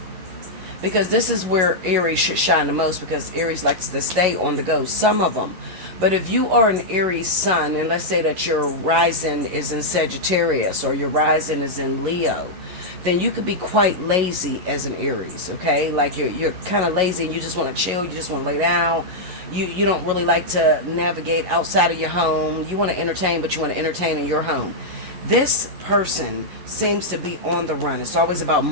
because this is where Aries should shine the most, because Aries likes to stay on the go, some of them. But if you are an Aries sun, and let's say that your rising is in Sagittarius, or your rising is in Leo, then you could be quite lazy as an Aries, okay? Like you're kind of lazy and you just want to chill, you just want to lay down. You don't really like to navigate outside of your home. You want to entertain, but you want to entertain in your home. This person seems to be on the run. It's always about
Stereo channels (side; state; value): left; late; 11 ms